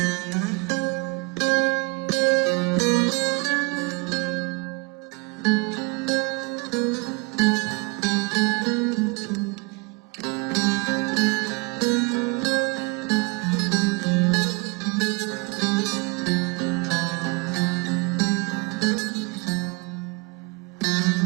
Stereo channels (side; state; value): left; quieter; 27.5 dB